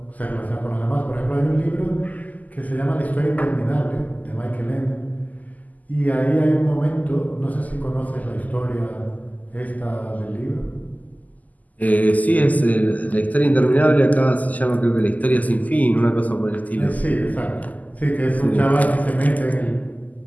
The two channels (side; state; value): right; late; 0.078 ms